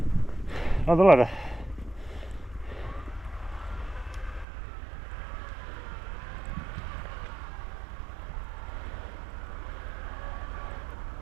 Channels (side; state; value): left; drops out; at 4.5 s